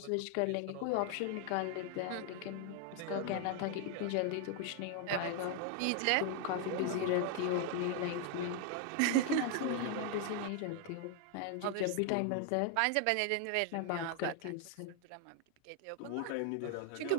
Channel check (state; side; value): different; both; correlation 0.00